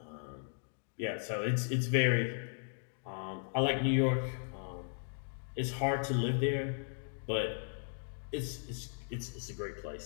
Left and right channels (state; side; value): silent; right; digital silence